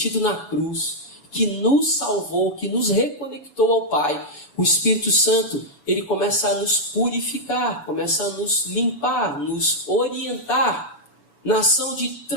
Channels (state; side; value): late; right; 7.0 ms